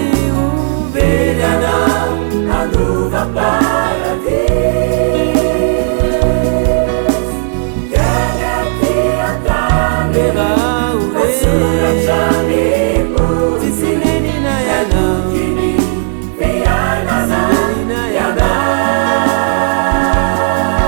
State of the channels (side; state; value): left; silent; 68 dB below the other